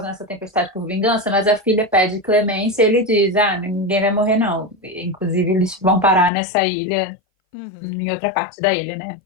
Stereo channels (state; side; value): drops out; right; at 6.3 s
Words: essa tempestade por vingança, mas a filha pede clemência e ele diz, ninguém vai morrer não. Inclusive eles vão parar nessa ilha, Uhum. em outra parte da ilha, né?